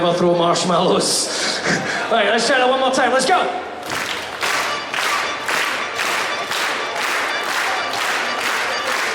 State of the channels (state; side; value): identical; both; correlation 1.00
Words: throw marshmallows. Right, let's try that one more time. Let's go.